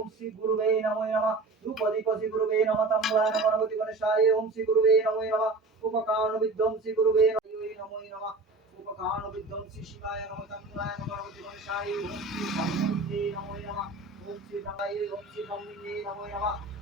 শ্রী গুরুবে নমো নমঃ রূপদীপতি গুরুবে নমঃ তাম্বুলায় গণপতি গণেশায় ওম শ্রী গুরুবে নমো নমঃ উপকারণ বিধ্বংসী গুরুবে নমো নমঃ উপকারণ বিধ্বংসী শিবায় নমঃ তাম্বুলায় গণপতি গণেশায় ওম শ্রী ব্রহ্মণে নমো নমঃ ওম শ্রী ব্রহ্মায় ওম শ্রী ব্রহ্মণে নমো নমঃ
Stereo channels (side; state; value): left; quieter; 3.4 dB